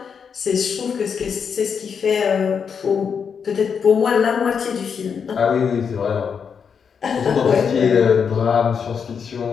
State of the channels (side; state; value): right; quieter; 6.6 dB